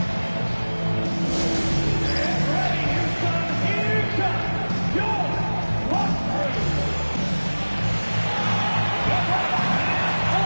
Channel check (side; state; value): both; inverted; correlation -1.00